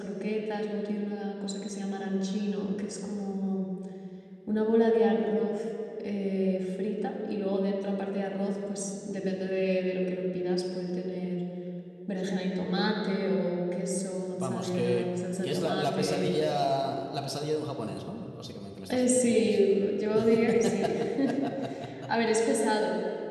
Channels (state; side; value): identical; both; correlation 1.00